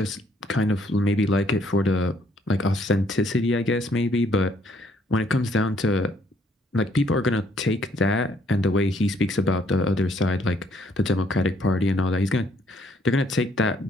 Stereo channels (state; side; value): normal; both; correlation 0.67